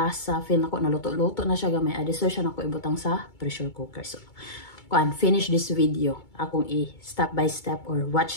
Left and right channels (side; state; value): right; late; 2.2 ms